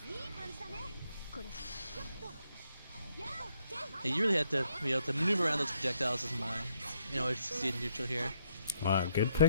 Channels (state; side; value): inverted; both; correlation -0.75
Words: Yeah, you really have to be able to maneuver around those projectiles as my, to succeed in neutral here. Wow, good